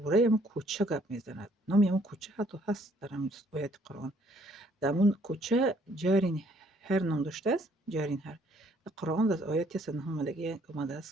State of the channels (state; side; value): normal; both; correlation 0.64